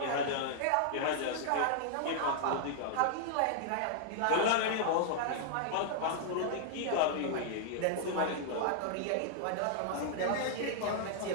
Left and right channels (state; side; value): different; both; correlation -0.01